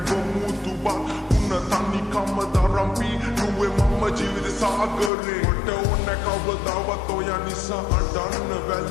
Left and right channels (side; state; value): right; drops out; at 5.1 s